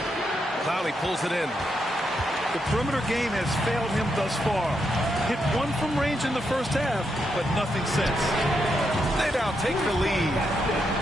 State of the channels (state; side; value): normal; both; correlation 0.81